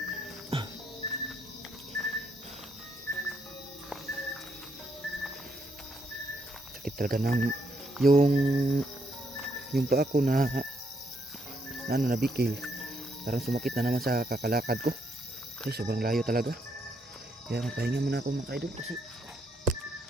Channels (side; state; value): both; normal; correlation 0.75